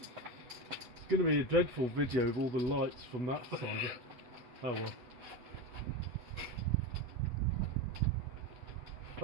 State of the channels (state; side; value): late; left; 8.0 ms